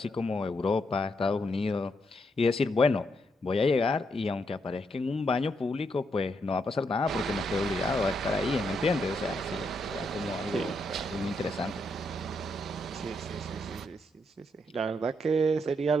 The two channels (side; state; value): both; normal; correlation 0.78